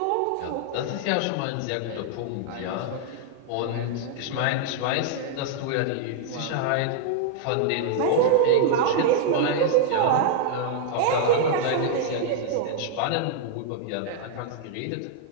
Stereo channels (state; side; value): different; both; correlation -0.01